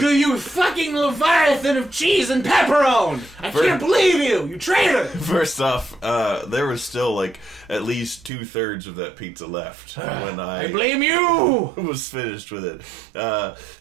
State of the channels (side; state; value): left; drops out; at 8.3 s